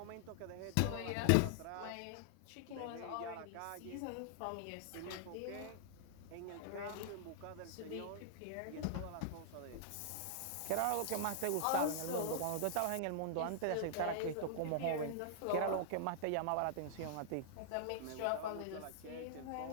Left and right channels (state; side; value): different; both; correlation -0.01